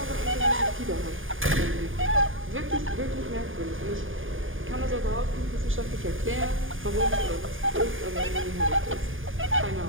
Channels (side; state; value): left; late; 0.59 ms